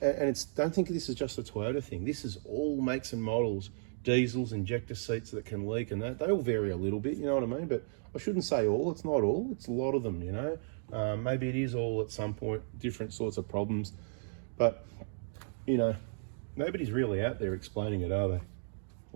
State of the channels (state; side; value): silent; left; digital silence